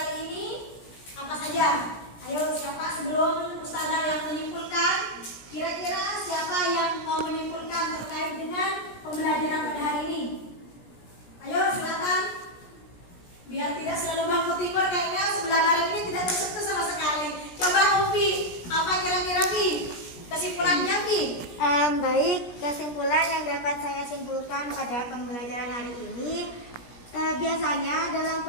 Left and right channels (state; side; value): late; right; 17 ms